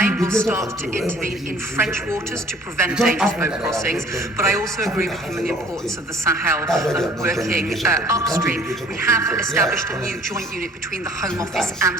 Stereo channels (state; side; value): normal; both; correlation 0.53